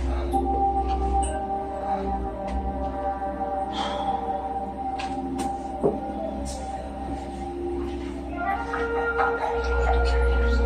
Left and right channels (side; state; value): both; identical; correlation 1.00